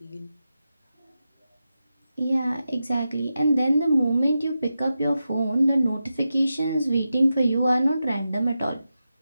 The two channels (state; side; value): inverted; both; correlation -0.91